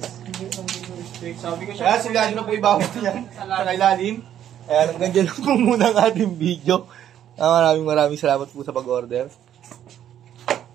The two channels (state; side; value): quieter; left; 10.5 dB